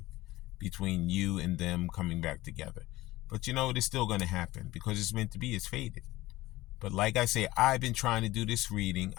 between you and them coming back together. But you know, it is still going to happen because it's meant to be. It's fated. But like I say, I've been trying to do this reading.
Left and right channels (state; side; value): quieter; right; 18.0 dB